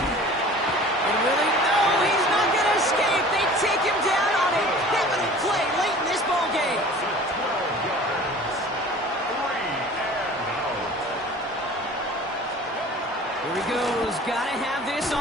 And really, no, he's not going to escape. They take him down on a pivotal play late in this ball game. Here he goes. Got to have this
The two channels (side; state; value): both; normal; correlation 0.44